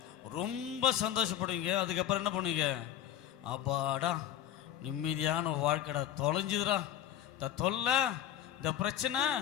ரொம்ப சந்தோஷப்படுவீங்க. அதுக்கப்புறம் என்ன பண்ணுவீங்க, அப்பாடா நிம்மதியான வாழ்க்கைடா, தொலைஞ்சுதுடா, இந்த தொல்லை, இந்த பிரச்சனை,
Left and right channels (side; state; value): right; quieter; 11.1 dB